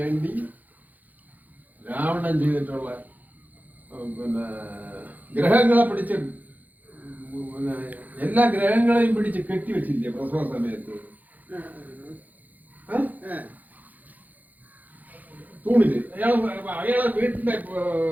രാവണൻ ചെയ്തിട്ടുള്ള പിന്നെ ഗ്രഹങ്ങളെ പിടിച്ച്, പിന്നെ എല്ലാ ഗ്രഹങ്ങളെയും പിടിച്ച് കെട്ടിവെച്ചില്ലേ പ്രസവ സമയത്ത്? തൂണില് അയാളെ വീട്ടിന്റെ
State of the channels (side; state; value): left; late; 0.082 ms